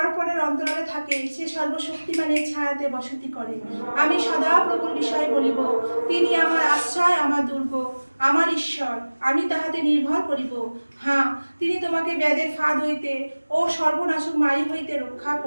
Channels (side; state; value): both; inverted; correlation -1.00